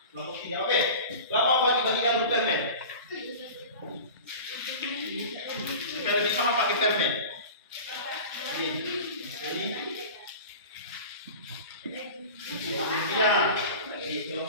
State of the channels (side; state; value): both; inverted; correlation -0.36